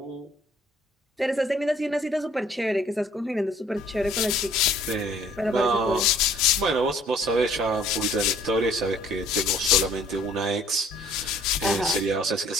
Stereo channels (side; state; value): both; normal; correlation 0.58